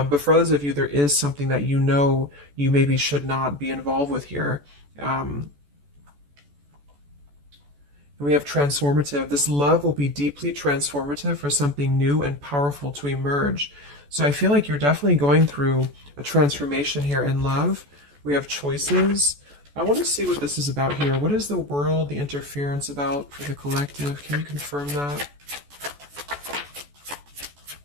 for others of you, there is something that you know you maybe should not be involved with here. And we have transformative. This love will be deeply transformative for something new and powerful to emerge. So I feel like you're definitely going through a transformation here in love. We have choices. I want to see what this is about here. What is the world, the interference about for the collective? Can you confirm that?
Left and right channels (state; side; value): late; left; 14 ms